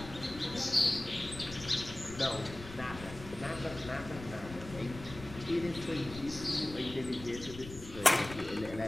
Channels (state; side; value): noise; left; rumble, 13 dB below the sound